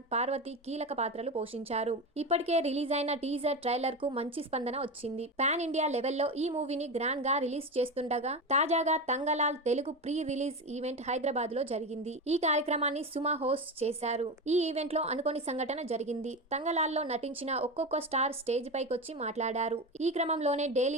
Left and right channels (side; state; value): both; normal; correlation 0.21